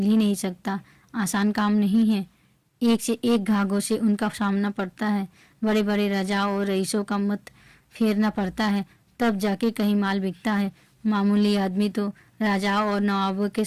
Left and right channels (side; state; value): both; identical; correlation 1.00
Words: ही नहीं सकता, आसान काम नहीं है। एक से एक घाघों से उनका सामना पड़ता है। बड़े बड़े राजाओं और रईसों का मत फेरना पड़ता है, तब जाके कहीं माल बिकता है। मामूली आदमी तो राजाओं और नवाबों के